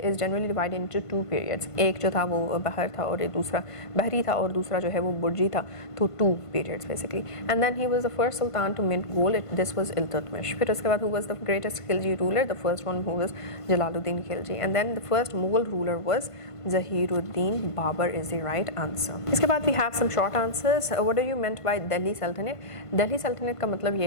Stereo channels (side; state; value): right; late; 1.5 ms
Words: is generally divided into two periods. एक जो था वो बहर था और एक दूसरा बहरी था और दूसरा जो है वो बुर्जी था, तो two periods basically. And then he was the first sultan to mint gold. This was Iltutmish. फिर उसके बाद who was the greatest Khilji ruler? The first one who was Jalaluddin Khilji. And then the first Mughal ruler was Zahiruddin Babur is the right answer. इसके बाद we have some short answers. What do you meant by Delhi Sultanate? Delhi Sultanate का मतलब ये